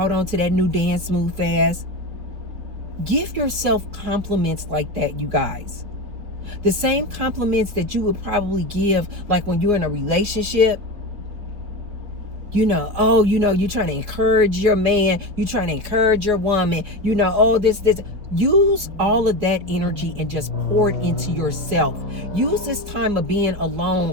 on to that new dance move fast. Give yourself compliments like that, you guys. The same compliments that you would probably give like when you're in a relationship. You're trying to encourage your man. You're trying to encourage your woman. This. Use all of that energy and just pour it into yourself. Use this time of being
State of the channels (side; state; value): left; late; 4.6 ms